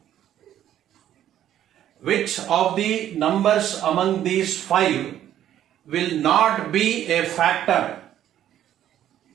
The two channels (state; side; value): quieter; left; 11.4 dB